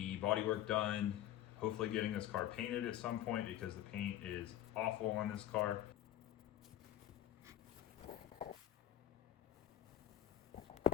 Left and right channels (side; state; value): right; quieter; 12.3 dB